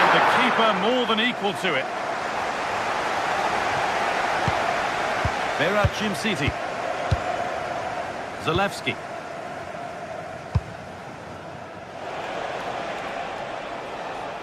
the keeper more than equal to it. Berat Jimsiti. Zalewski.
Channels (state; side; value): identical; both; correlation 1.00